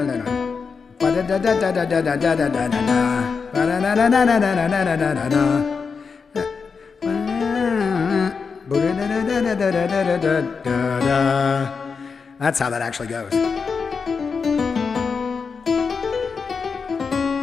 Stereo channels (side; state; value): right; quieter; 5.3 dB